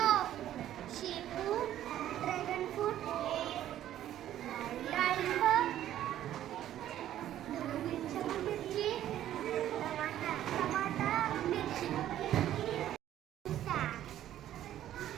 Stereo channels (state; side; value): quieter; left; 12.1 dB